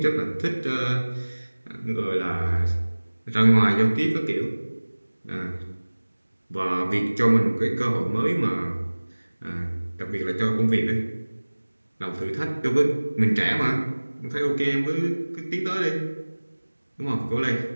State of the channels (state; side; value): inverted; both; correlation -1.00